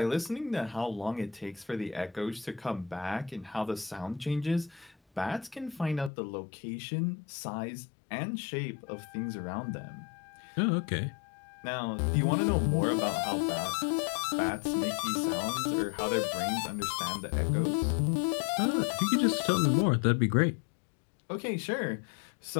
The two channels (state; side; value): drops out; right; at 6.1 s